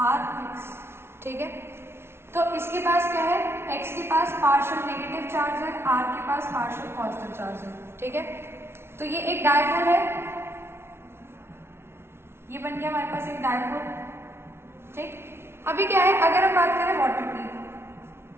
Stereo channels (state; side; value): late; left; 0.12 ms